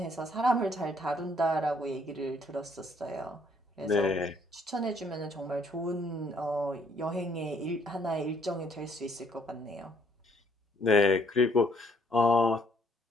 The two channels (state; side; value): normal; both; correlation 0.66